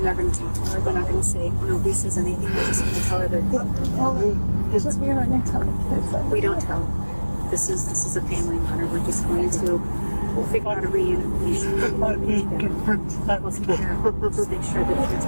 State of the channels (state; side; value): inverted; both; correlation -1.00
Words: not going to talk to her. They're not going to say nobody says anything. They're just going to tell her that. It's just we're not going to tell the kids. We don't tell. This is a family matter. We're just going to. We'll figure out a reunification. I need to protect We'll take care of it. Just make sure that